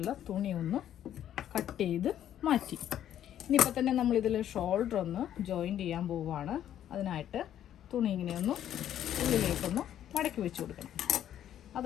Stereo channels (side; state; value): right; quieter; 10.9 dB